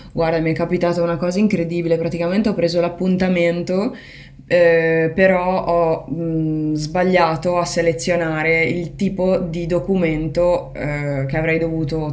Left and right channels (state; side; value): identical; both; correlation 1.00